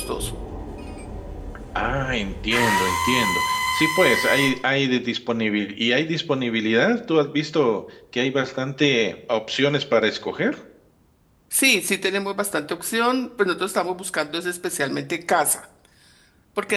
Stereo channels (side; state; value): both; identical; correlation 1.00